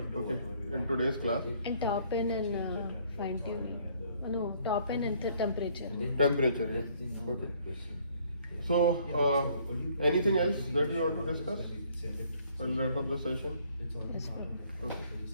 okay, in today's class. And top end and fine tuning. No, top end and temperature. Temperature, yeah. Okay. So anything else that you want to discuss? We'll wrap up the session. Yes, Okay.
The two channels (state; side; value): inverted; both; correlation -0.62